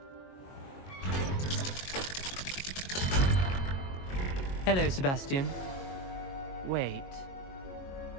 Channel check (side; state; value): right; late; 22 ms